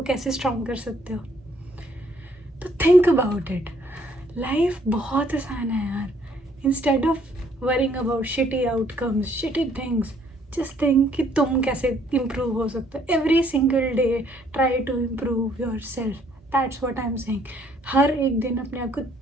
कैसे स्ट्रांग कर सकते हो? तो थिंक अबाउट इट. लाइफ बहुत आसान है यार. Instead of worrying about shitty outcomes, shitty things, just think कि तुम कैसे इम्प्रूव हो सकते हो. Every single day try to improve yourself. That's what I am saying. हर एक दिन अपने आप को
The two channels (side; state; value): both; normal; correlation 0.65